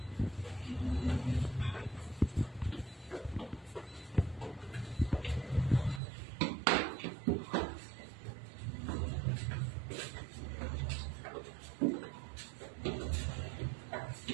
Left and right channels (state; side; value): drops out; left; at 6.0 s